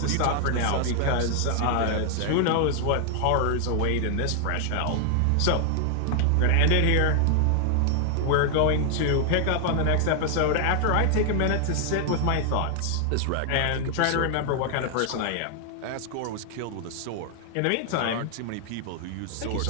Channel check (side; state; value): both; different; correlation 0.00